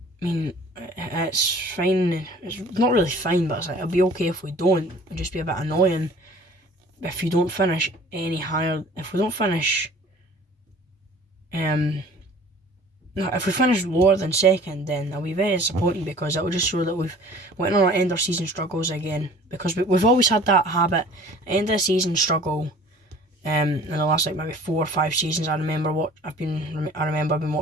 I mean, it's fine. It's not really fine, but it's like, it'll be okay if we don't. It'll just be a bit annoying if you don't finish any higher. If we don't finish, no, if we finish lower than second, then I'll be very disappointed, because it will just show that we've went on our end of season struggles again. Because we've always had that habit, end of season struggle. In the last like maybe 4 or 5 seasons, I remember I've been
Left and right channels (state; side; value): normal; both; correlation 0.48